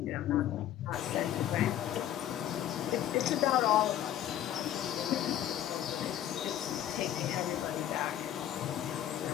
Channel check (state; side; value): quieter; right; 11.6 dB